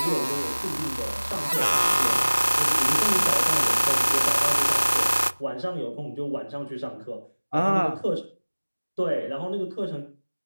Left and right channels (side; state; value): both; inverted; correlation -1.00